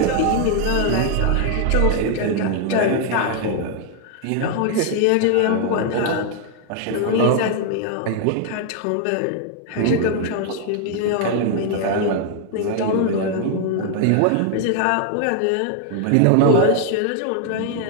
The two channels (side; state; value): both; different; correlation 0.00